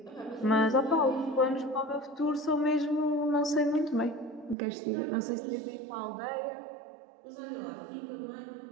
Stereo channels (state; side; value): drops out; left; at 4.5 s